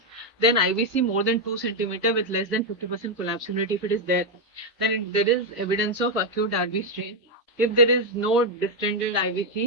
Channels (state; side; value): normal; both; correlation 0.02